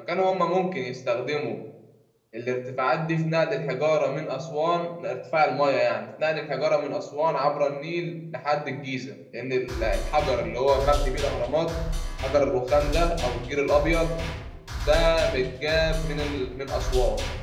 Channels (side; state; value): both; identical; correlation 1.00